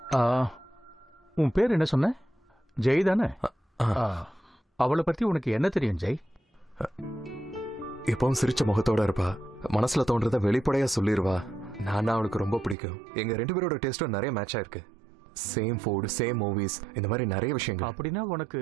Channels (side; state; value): left; drops out; at 12.8 s